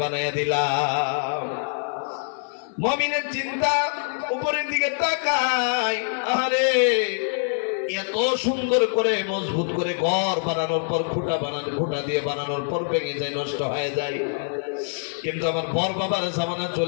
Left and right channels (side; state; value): right; silent; 55 dB below the other